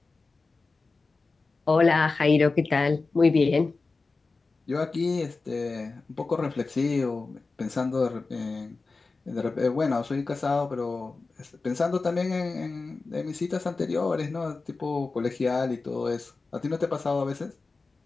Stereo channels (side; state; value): right; quieter; 3.9 dB